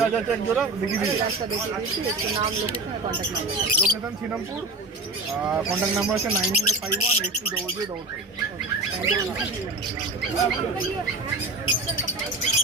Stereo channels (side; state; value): left; quieter; 3.1 dB